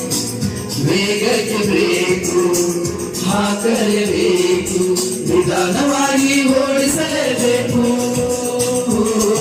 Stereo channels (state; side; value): identical; both; correlation 1.00